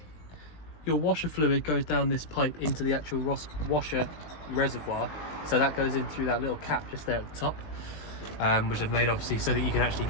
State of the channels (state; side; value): late; right; 19 ms